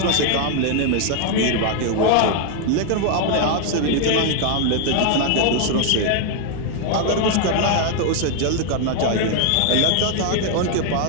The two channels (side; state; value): both; different; correlation 0.01